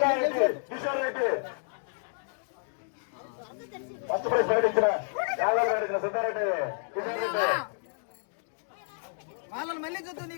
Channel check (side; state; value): right; silent; digital silence